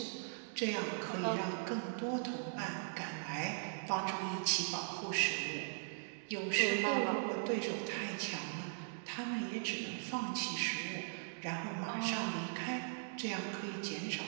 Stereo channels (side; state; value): left; silent; digital silence